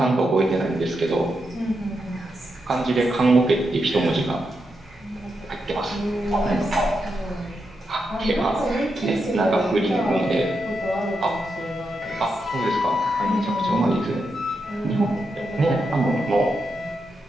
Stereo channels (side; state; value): both; normal; correlation 0.85